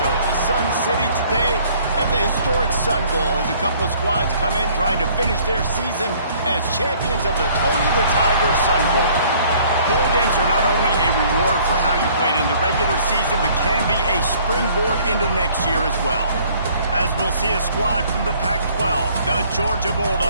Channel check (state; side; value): inverted; both; correlation -0.57